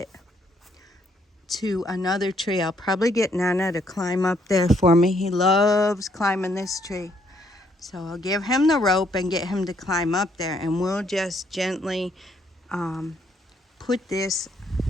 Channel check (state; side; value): normal; both; correlation 0.70